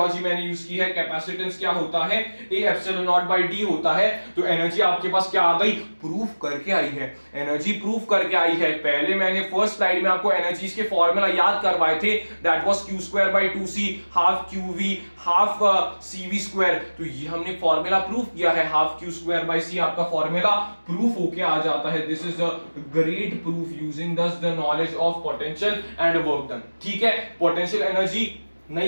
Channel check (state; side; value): inverted; both; correlation -1.00